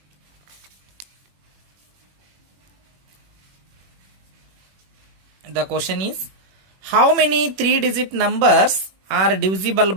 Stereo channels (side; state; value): left; late; 21 ms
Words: The question is, how many 3-digit numbers are divisible